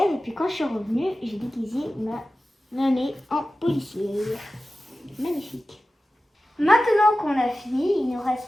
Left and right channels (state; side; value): normal; both; correlation 0.95